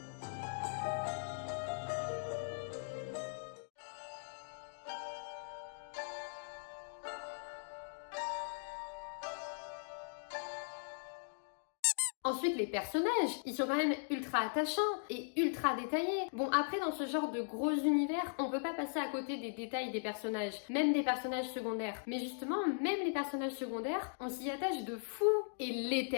Ensuite, les personnages, ils sont quand même ultra attachants et ultra détaillés. Bon, après, dans ce genre de gros univers, on peut pas passer à côté des détails des personnages, même des personnages secondaires. Mais justement, même les personnages secondaires, on s'y attache de fou. Et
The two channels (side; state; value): right; silent; digital silence